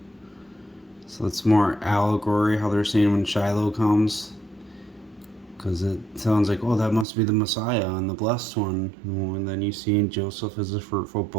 So it's more allegory how they're saying when Shiloh comes. Because it sounds like, oh, that must be the Messiah and the blessed one. And then you see Joseph as a fruitful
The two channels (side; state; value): left; drops out; at 7.1 s